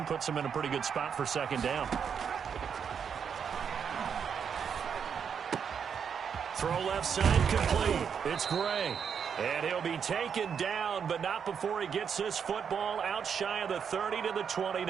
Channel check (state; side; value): quieter; left; 7.1 dB